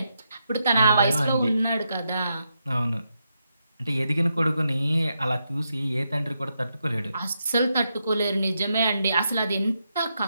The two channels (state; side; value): inverted; both; correlation -0.83